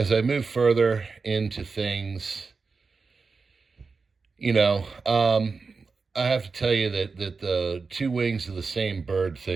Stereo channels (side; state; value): left; quieter; 4.5 dB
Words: I move further into things, I have to tell you that the two wings of the same bird